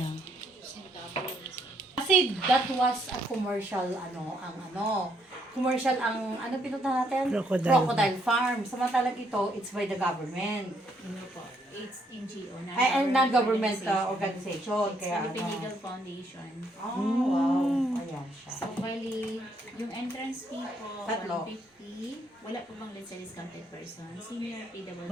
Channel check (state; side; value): normal; both; correlation 0.72